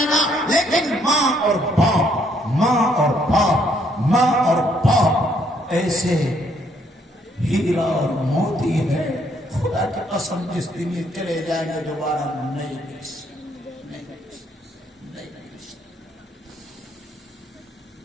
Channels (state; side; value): normal; both; correlation 0.69